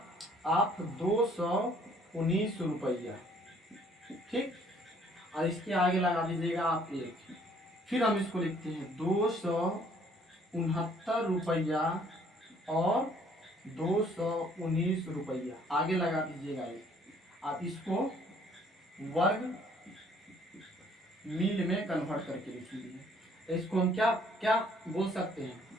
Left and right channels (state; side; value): normal; both; correlation 0.61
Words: आप 219 रुपया। ठीक, और इसके आगे लगा दीजिएगा आप 1। फिर हम इसको लिखते हैं 269 रुपया और 219 रुपया, आगे लगा दीजिएगा 1। आप इसको वर्ग मील में कन्वर्ट करके लिखिए। इसको हम क्या क्या बोल सकते हैं,